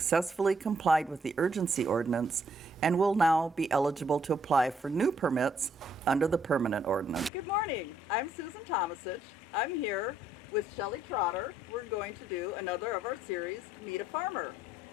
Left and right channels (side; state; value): both; normal; correlation 0.70